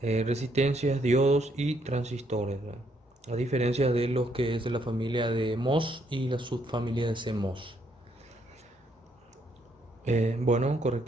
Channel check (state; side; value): normal; both; correlation 0.72